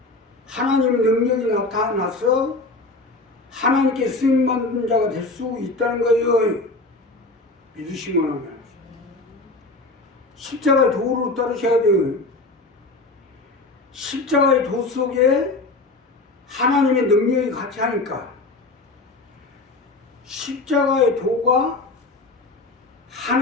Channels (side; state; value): right; quieter; 3.2 dB